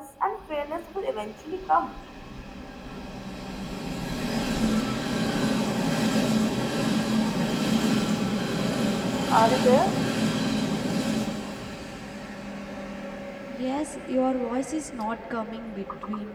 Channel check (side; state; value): both; identical; correlation 1.00